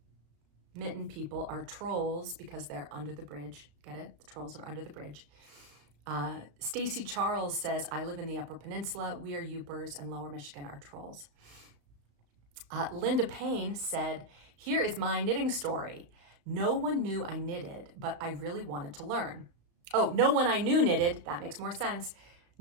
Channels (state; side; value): late; left; 35 ms